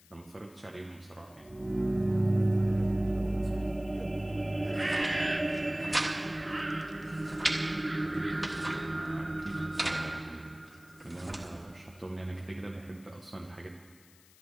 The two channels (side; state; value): left; noise; hiss, 26 dB below the sound